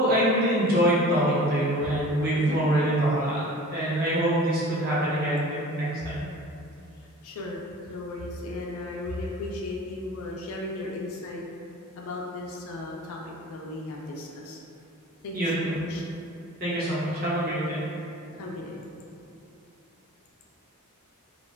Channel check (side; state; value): both; normal; correlation 0.42